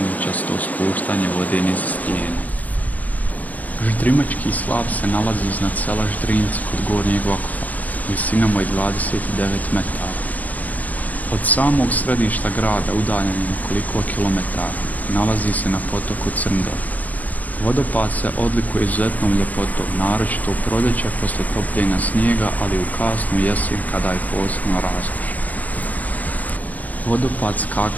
spuštanje vode niz stijene. Ždrimački slap se nalazi iznad sela Ždrinci kod Gornjeg Vakuffa, visinom od 29 metara. Od samog središta grada, udaljen nekoliko kilometara, nalazi se na potoku Crndor. Vodopad se odlikuje izuzetnom ljepotom, naročito u proljeće poslije topljenja snijega, ali u kasnu jesen kada je posebno raskošan. Vodopad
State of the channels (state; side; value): late; right; 0.078 ms